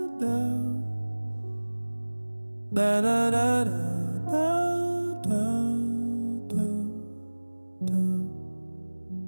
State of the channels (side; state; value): both; inverted; correlation -1.00